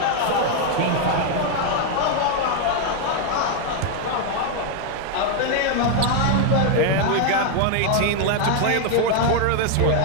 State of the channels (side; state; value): both; different; correlation 0.00